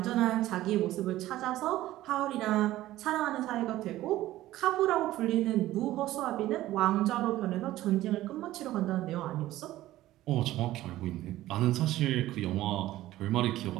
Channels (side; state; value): left; quieter; 15.3 dB